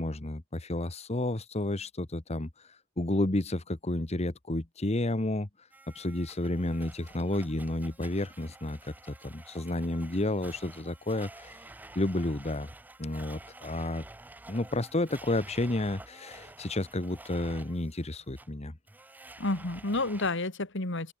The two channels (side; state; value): both; normal; correlation 0.64